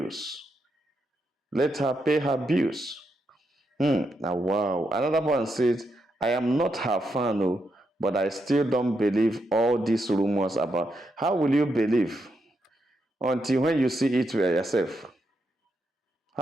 Let her pay her bills. Now, wow. Another one says, I am not her fan, oh, but I still don't believe all these rumors about. How will you believe until when you see it for yourself?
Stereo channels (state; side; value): normal; both; correlation 0.82